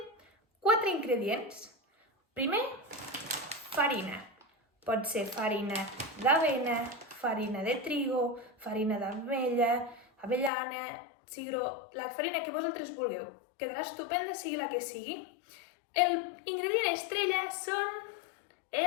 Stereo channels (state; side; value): drops out; right; at 10.5 s